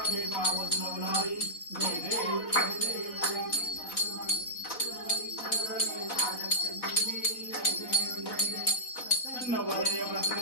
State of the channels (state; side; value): late; right; 4.0 ms